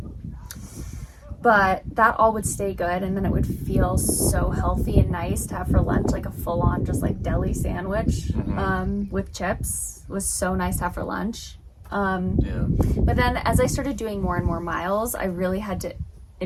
But that all would stay good, and then it would feel so healthy and nice to have for lunch, like a full-on just like deli sandwich with chips was so nice to have for lunch. But then as I started doing more and more miles, I really had to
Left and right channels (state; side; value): identical; both; correlation 1.00